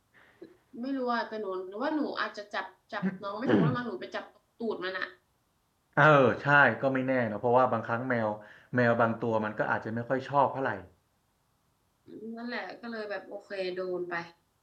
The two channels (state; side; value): identical; both; correlation 1.00